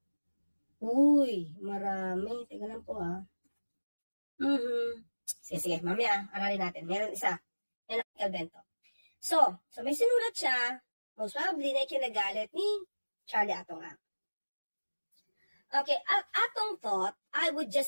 Uy, marami. Teka lang po ha. Sige. Mamaya, aralin natin. Meron isa. Yan ang Calvento. So may sinulat siya. Most probably na ikinagalit ni Charlie Atong. Okay, Atong thought, I would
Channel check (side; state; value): both; inverted; correlation -1.00